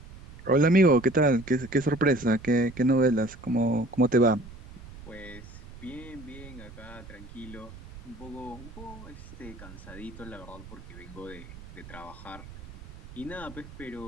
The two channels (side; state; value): right; noise; rumble, 16 dB below the sound